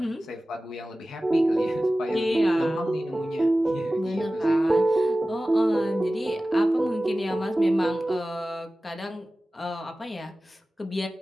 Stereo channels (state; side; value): normal; both; correlation 0.96